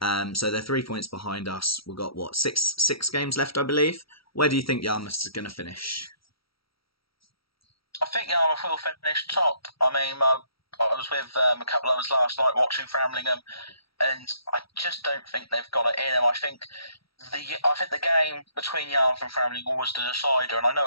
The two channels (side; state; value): right; late; 0.75 ms